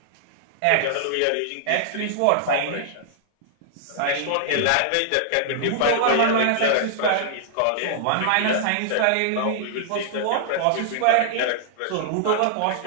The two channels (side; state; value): both; different; correlation -0.01